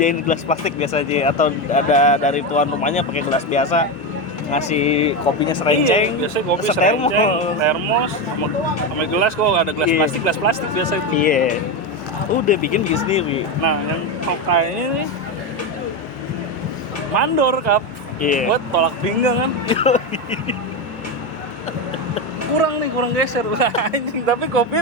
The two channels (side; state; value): both; normal; correlation 0.13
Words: gelas plastik biasa aja atau ada dari tuan rumahnya pakai gelas biasa ngasih kopinya serenceng. Iya, biasanya kopi setermos. serenceng, termos, sama gelas kok ada gelas Iya. plastik biasa itu. Iya. Udah bikin sendiri. Nah, yang tokainya nih mandor kap. Iya. Buat tolak pinggang kan. kurang geser. Anjing, tapi kopinya